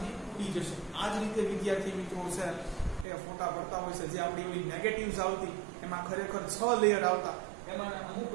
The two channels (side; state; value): left; drops out; at 3.1 s